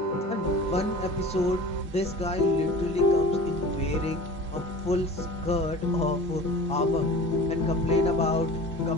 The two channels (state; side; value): normal; both; correlation 0.39